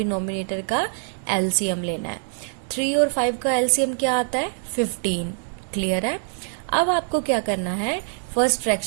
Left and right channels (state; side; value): silent; left; 61 dB below the other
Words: का एलसीएम लेना है। 3 और 5 का एलसीएम क्या आता है? 15। क्लियर है? अब आपको क्या करना है? फर्स्ट